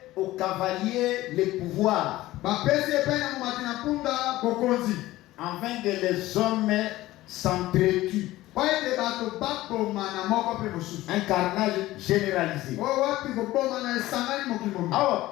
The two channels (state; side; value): quieter; right; 16.7 dB